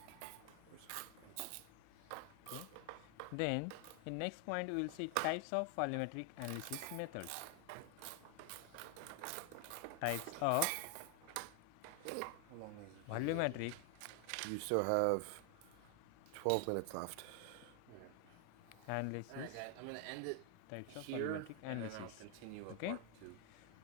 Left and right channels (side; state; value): both; different; correlation 0.00